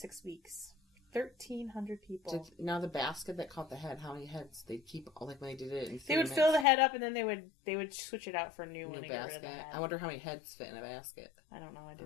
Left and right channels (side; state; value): right; drops out; at 6.7 s